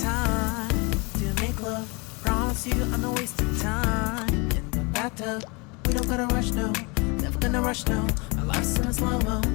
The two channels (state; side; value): quieter; right; 29.2 dB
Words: to make love. Promise you I'm not wasting time in the bathtub. We don't gotta rush, no. Never gonna rush, no. Our life's in a slow-mo,